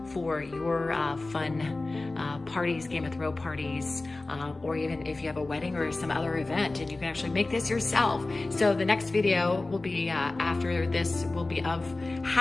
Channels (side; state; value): right; quieter; 3.2 dB